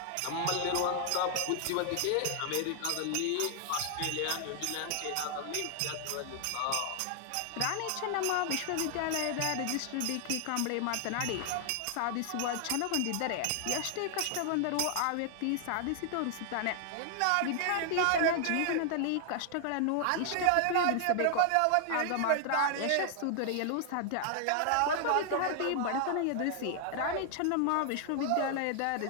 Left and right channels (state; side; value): different; both; correlation 0.00